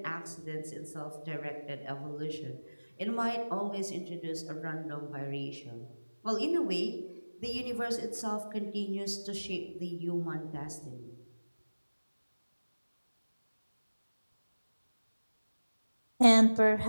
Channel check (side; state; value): both; inverted; correlation -1.00